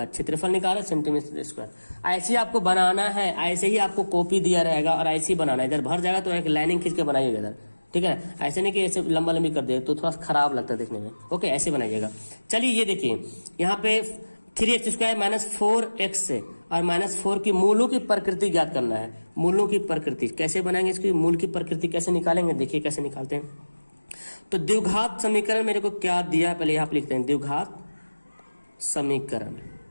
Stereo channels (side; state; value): both; inverted; correlation -1.00